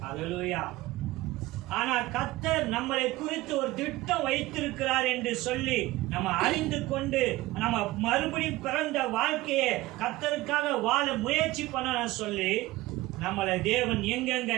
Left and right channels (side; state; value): left; quieter; 18.6 dB